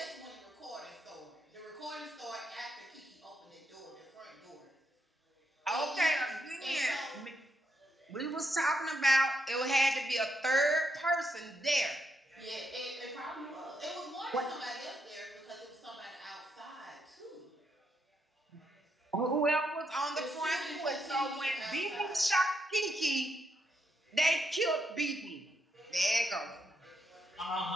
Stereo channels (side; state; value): both; normal; correlation 0.79